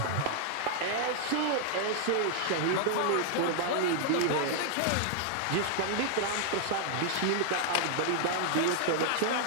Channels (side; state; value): both; different; correlation 0.00